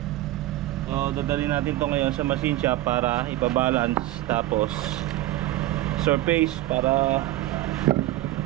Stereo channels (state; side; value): quieter; left; 15.6 dB